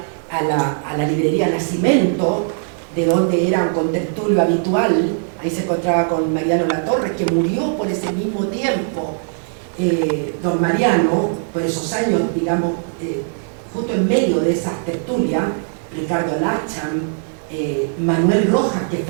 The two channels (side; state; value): left; silent; digital silence